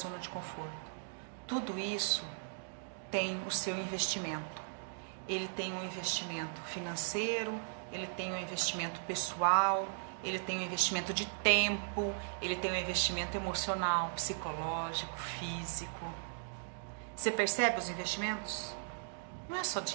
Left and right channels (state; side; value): silent; left; digital silence